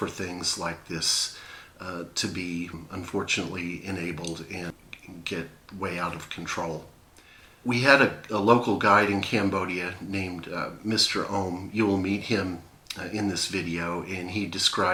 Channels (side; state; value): both; identical; correlation 1.00